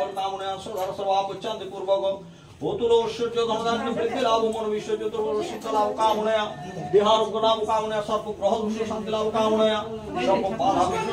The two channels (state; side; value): identical; both; correlation 1.00